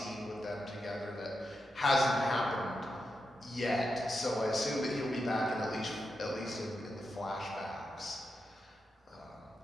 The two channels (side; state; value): both; normal; correlation 0.87